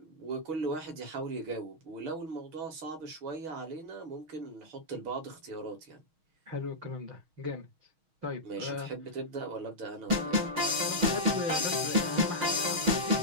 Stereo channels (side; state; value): left; late; 6.3 ms